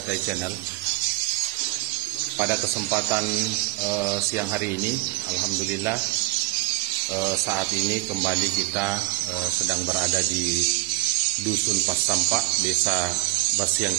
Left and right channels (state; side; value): quieter; left; 20.0 dB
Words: Channel. Pada kesempatan siang hari ini, alhamdulillah saat ini kembali kita sedang berada di Dusun Pasampak, Desa Basiang